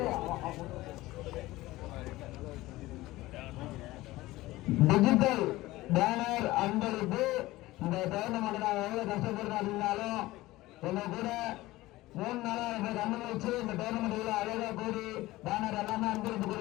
digital banner அன்பருக்கு இந்த டோர்னமெண்ட் நான் எவ்வளவு கஷ்டப்படுறேன் அப்படின்னாலும் உங்க கூட 3 நாளா எனக்கு அனுபவிச்சு இந்த டோர்னமெண்ட் அழகா கூடி பேனர் எல்லாமே அன்பளிப்பு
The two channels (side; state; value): right; quieter; 18.2 dB